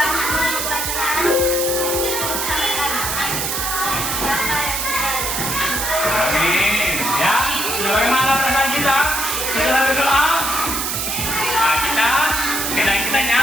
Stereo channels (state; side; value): noise; right; hiss, 1 dB below the sound